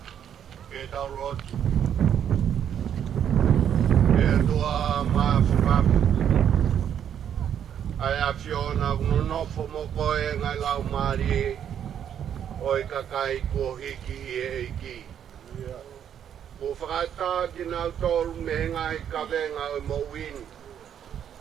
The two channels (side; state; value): left; quieter; 9.2 dB